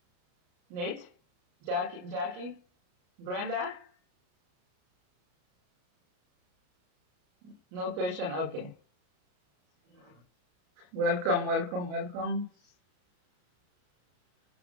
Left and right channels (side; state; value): left; late; 33 ms